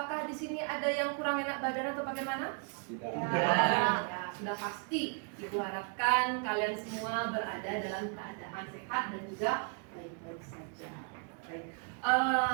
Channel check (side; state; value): left; quieter; 38.5 dB